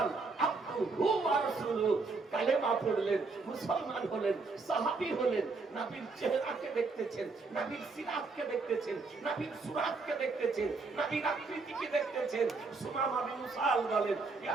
আবদুহু ওয়া রাসূলুহু। কালেমা পড়লেন, মুসলমান হলেন, সাহাবী হলেন। নবীর চেহারাকে দেখতেছেন, নবীর সিরাতকে দেখতেছেন, নবীর সুরাতকে দেখতেছেন, নবীর আকৃতিকে দেখতেছেন। সুমামা বিন উসাল বলেন,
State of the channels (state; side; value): quieter; left; 4.0 dB